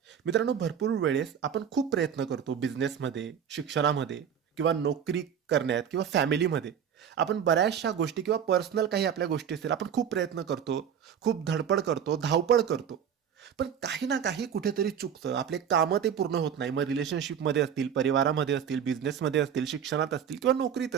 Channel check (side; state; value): left; quieter; 8.3 dB